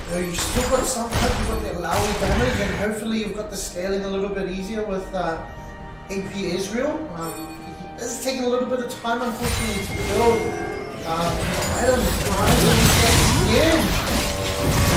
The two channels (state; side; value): identical; both; correlation 1.00